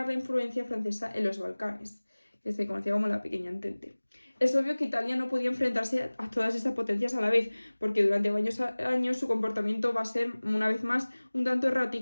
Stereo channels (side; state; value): both; inverted; correlation -1.00